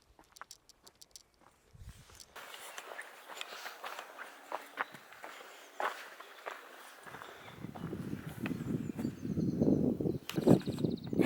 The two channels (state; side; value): identical; both; correlation 1.00